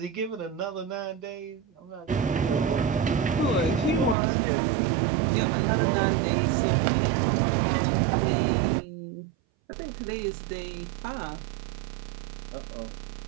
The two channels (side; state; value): left; drops out; at 4.2 s